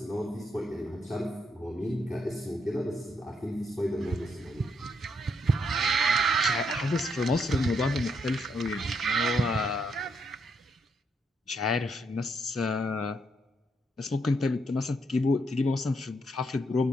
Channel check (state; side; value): normal; both; correlation 0.76